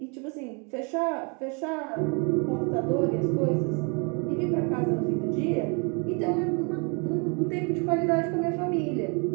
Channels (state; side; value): quieter; left; 34.1 dB